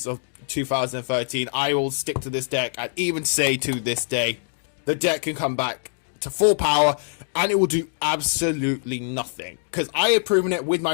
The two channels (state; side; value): silent; right; digital silence